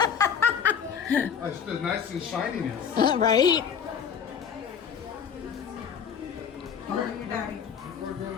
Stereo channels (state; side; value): quieter; right; 7.4 dB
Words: It's the nice and shininess. Right?